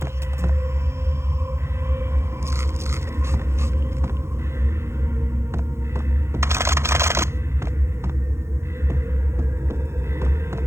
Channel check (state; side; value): late; left; 0.13 ms